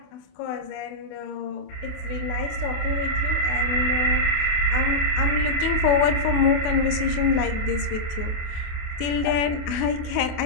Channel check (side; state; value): right; late; 28 ms